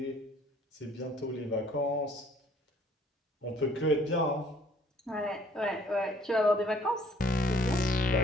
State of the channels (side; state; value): both; normal; correlation 0.58